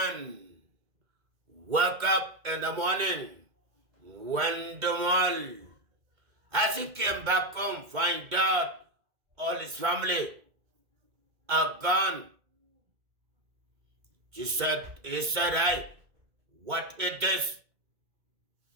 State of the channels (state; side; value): late; left; 2.1 ms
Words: woke up in the morning, went to the mall. As he came back home, find out all his family are gone. He said, hey, what it is?